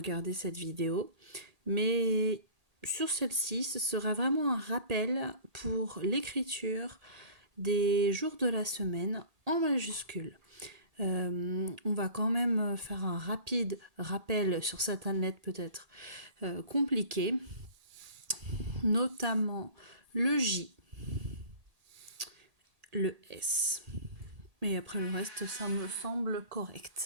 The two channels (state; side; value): late; left; 1.8 ms